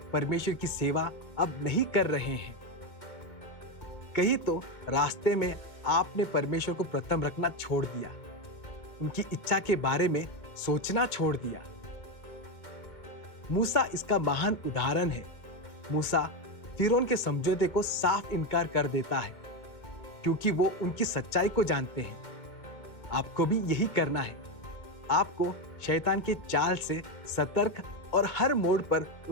परमेश्वर की सेवा अब नहीं कर रहे हैं। कहीं तो रास्ते में आपने परमेश्वर को प्रथम रखना छोड़ दिया, उनकी इच्छा के बारे में सोचना छोड़ दिया। मूसा इसका महान उदाहरण है। मूसा फिरौन के समझौते को साफ इनकार कर देता है क्योंकि वो उनकी सच्चाई को जानते हैं। आपको भी यही करना है। आपको शैतान के चाल से सतर्क और हर मोड़ पर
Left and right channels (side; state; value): right; late; 2.1 ms